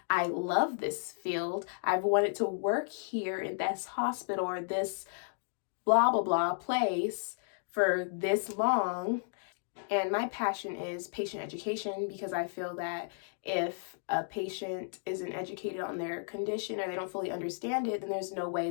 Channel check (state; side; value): silent; right; digital silence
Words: love this field. I've wanted to work here in this hospital or this blah, blah, blah place for this long. And my passion is patient education, because I feel that if a patient isn't educated on their condition or they don't fully understand it, then there's no way